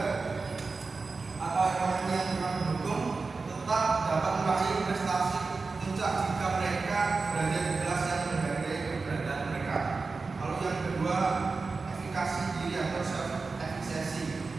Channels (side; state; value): left; quieter; 4.1 dB